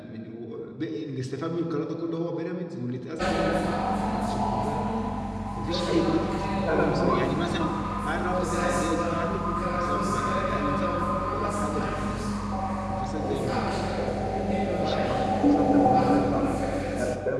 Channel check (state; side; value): identical; both; correlation 1.00